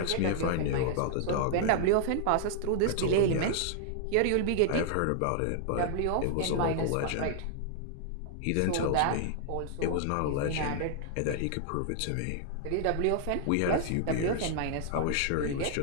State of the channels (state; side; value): different; both; correlation -0.01